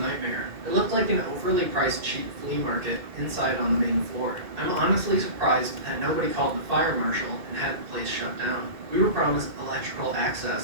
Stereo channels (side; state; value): left; late; 2.3 ms